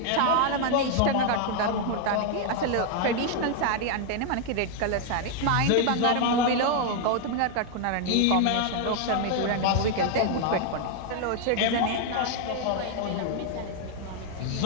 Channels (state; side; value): different; both; correlation 0.00